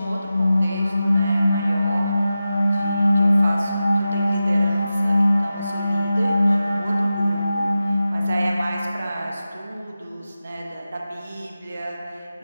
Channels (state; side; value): inverted; both; correlation -0.93